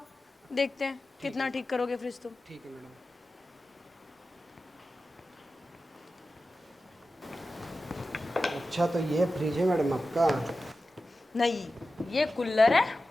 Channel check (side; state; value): both; normal; correlation 0.93